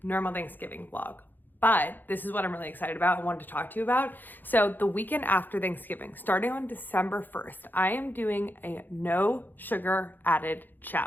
normal Thanksgiving vlog. But this is what I'm really excited about and wanted to talk to you about. So the weekend after Thanksgiving, starting on December 1st, I am doing a no sugar added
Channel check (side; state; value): right; late; 0.089 ms